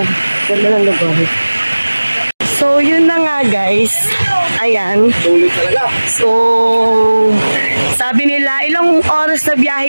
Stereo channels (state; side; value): inverted; both; correlation -1.00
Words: ganda ng lugar. So, yun na nga, guys. Ayan. So, sabi nila, ilang oras na biyahe,